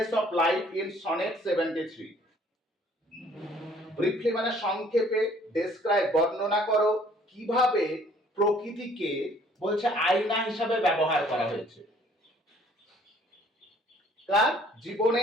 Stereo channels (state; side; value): normal; both; correlation 0.59